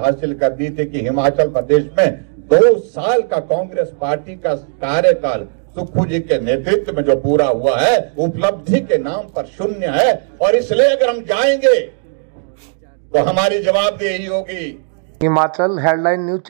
कर दी थी कि हिमाचल प्रदेश में 2 साल का कांग्रेस पार्टी का कार्यकाल सुक्खू जी के नेतृत्व में जो पूरा हुआ है, उपलब्धि के नाम पर शून्य है। और इसलिए अगर हम जाएंगे तो हमारी जवाबदेही होगी। हिमाचल हेडलाइन न्यूज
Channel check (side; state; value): left; silent; 69 dB below the other